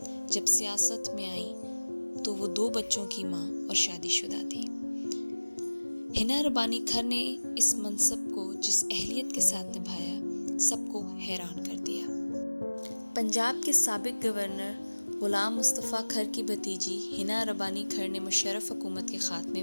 جب سیاست میں آئیں تو وہ 2 بچوں کی ماں اور شادی شدہ تھی۔ حنا ربانی کھر نے اس منصب کو جس اہلیت کے ساتھ نبھایا سب کو حیران کر دیا۔ پنجاب کے سابق گورنر غلام مصطفیٰ کھر کی بھتیجی حنا ربانی کھر نے مشرف حکومت کے خاتمے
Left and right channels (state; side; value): inverted; both; correlation -1.00